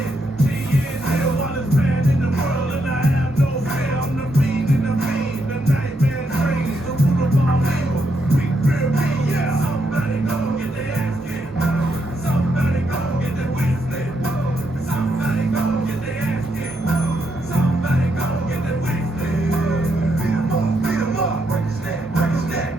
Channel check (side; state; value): both; normal; correlation 0.79